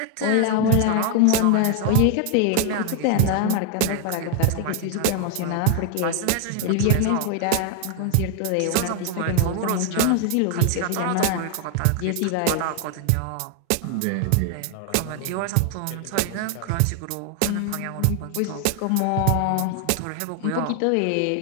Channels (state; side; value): different; both; correlation 0.01